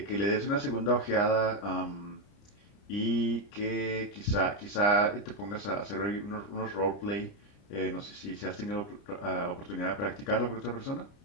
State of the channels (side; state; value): right; late; 30 ms